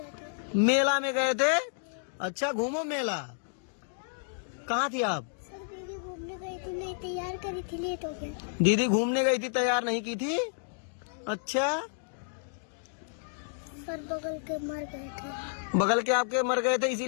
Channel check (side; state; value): right; silent; digital silence